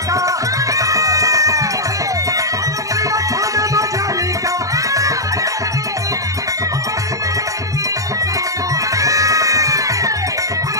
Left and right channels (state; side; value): late; left; 0.16 ms